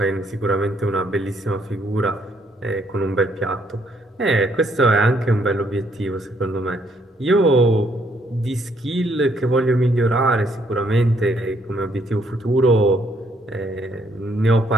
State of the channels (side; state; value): both; normal; correlation 0.70